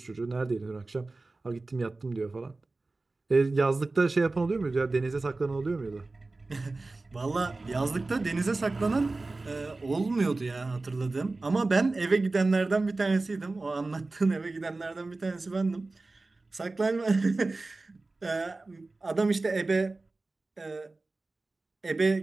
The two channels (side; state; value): left; quieter; 3.3 dB